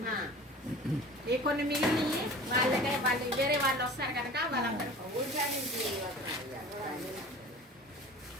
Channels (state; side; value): normal; both; correlation 0.40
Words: ఈ కొన్ని మిగిలిన వాళ్ళ దగ్గర వాళ్ళు వేరే వాళ్ళు వస్తారు కనుక వాళ్ళందరూ